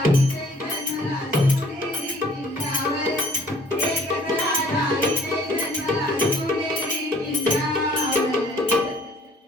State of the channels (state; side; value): normal; both; correlation 0.55